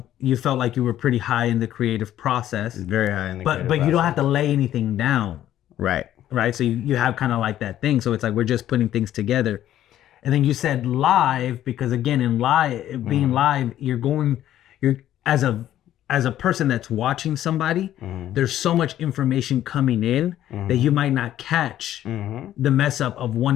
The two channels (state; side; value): quieter; right; 12.2 dB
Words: you felt like you were pretty high in the creative process. Very high in the creative But process. you don't have to lay anything down. Right. So you have kind of like that thing. So it's like we're just putting things together. And then you said live because again in being live, you're as a person that's watching somebody, there's so much information coming in that you might not catch the mess up of one